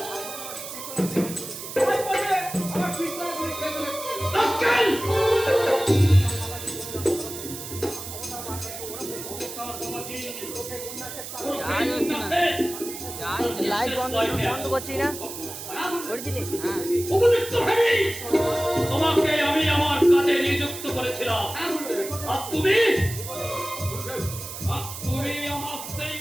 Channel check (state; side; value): noise; right; hiss, 9 dB below the sound